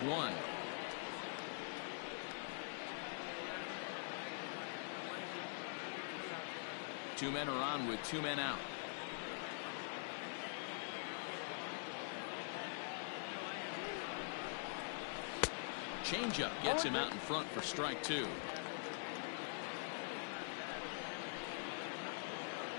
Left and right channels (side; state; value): right; silent; digital silence